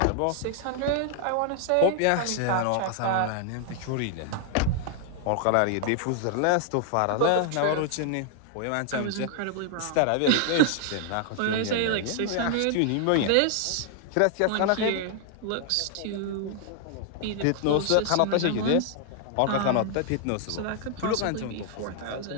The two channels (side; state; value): both; different; correlation 0.00